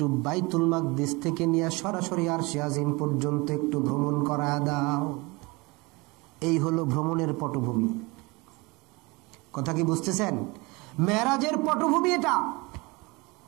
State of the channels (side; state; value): left; quieter; 25.2 dB